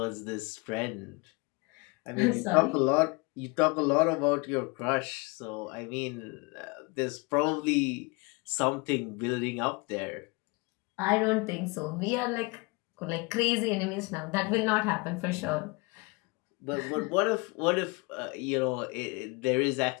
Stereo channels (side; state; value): right; quieter; 27.8 dB